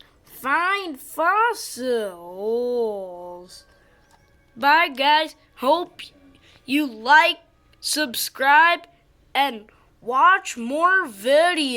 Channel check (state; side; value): identical; both; correlation 1.00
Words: Find fossils. Bye, guys. Hope you like, subscribe, and watch more